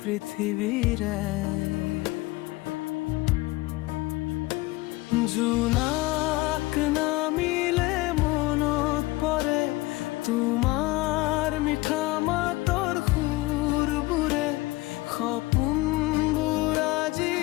জোনাক নামিলে মনত পৰে তোমাৰ মিঠা মাতৰ সুৰবোৰে। সপোনবোৰ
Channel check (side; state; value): right; quieter; 20.4 dB